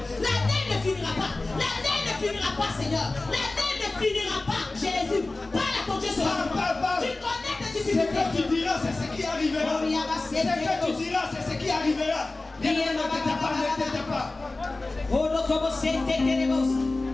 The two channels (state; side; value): quieter; right; 3.1 dB